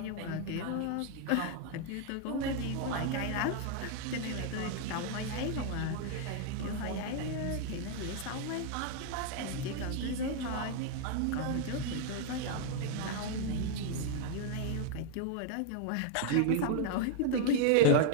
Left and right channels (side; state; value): both; different; correlation 0.00